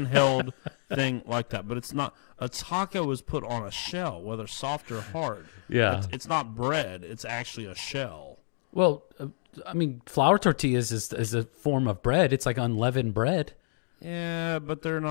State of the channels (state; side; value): silent; right; digital silence